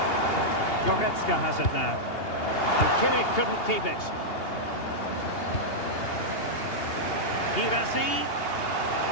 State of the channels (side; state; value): right; late; 2.8 ms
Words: Goretzka has it now. And Kimmich couldn't keep it. Girassi.